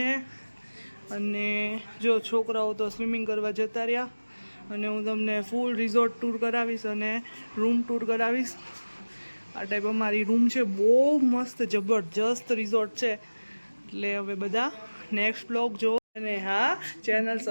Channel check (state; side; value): inverted; both; correlation -1.00